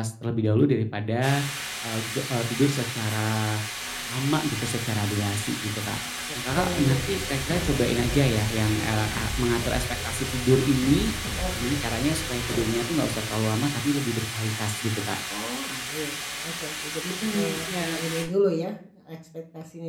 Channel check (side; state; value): both; identical; correlation 1.00